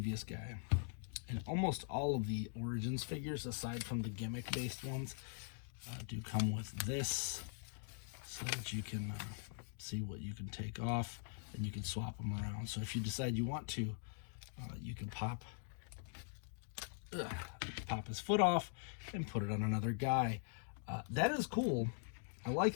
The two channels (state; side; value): silent; right; digital silence